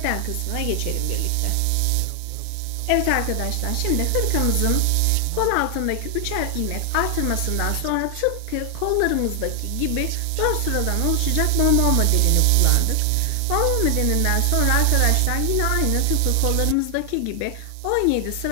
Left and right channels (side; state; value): both; different; correlation 0.00